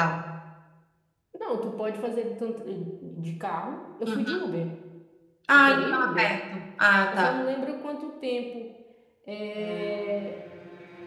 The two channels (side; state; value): both; identical; correlation 1.00